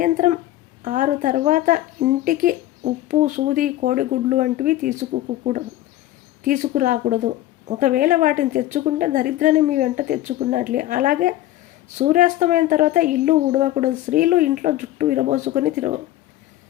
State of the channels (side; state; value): right; quieter; 14.6 dB